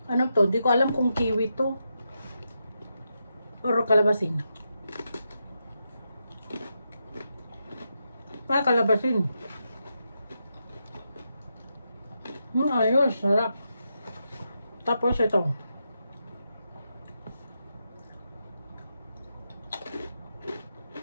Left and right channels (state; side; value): inverted; both; correlation -0.85